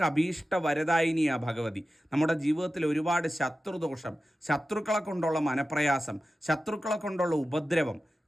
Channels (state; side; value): normal; both; correlation 0.93